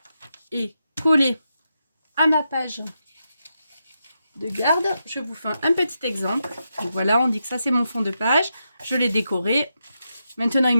est collée à ma page de garde. Je vous fais un petit exemple. Donc, voilà, on dit que ça, c'est mon fond de page. Je l'ai décoré. Maintenant, il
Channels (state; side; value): inverted; both; correlation -0.85